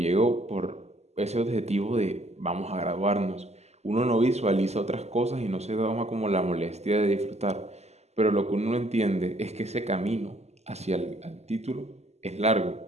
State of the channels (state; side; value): late; left; 0.32 ms